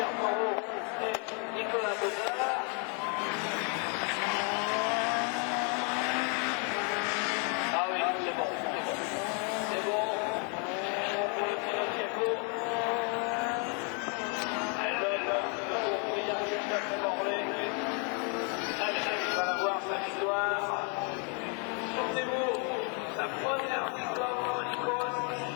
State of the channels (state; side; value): quieter; right; 38.0 dB